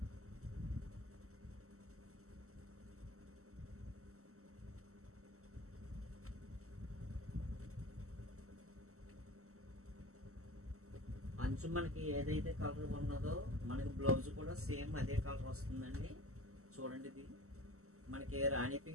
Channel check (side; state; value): left; late; 0.63 ms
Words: అంచు మనకి ఏదైతే కలర్ ఉన్నదో మనకి బ్లౌజ్ కూడా సేమ్ అదే కలర్ వస్తుందండి. చూడండి ఇది మనకి రాణి